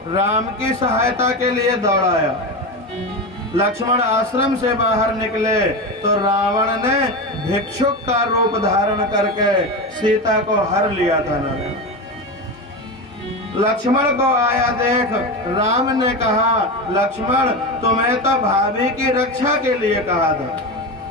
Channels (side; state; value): both; normal; correlation 0.20